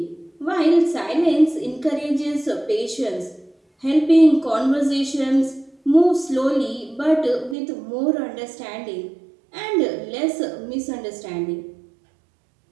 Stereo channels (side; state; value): left; drops out; at 7.6 s